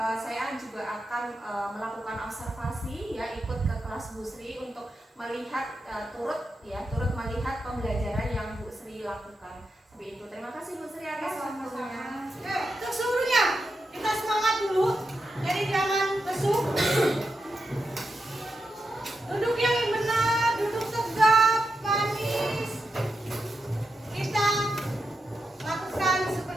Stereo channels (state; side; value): normal; both; correlation 0.87